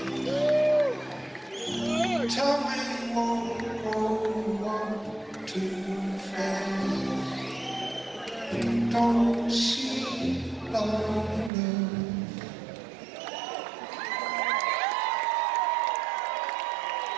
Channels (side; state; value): left; drops out; at 11.5 s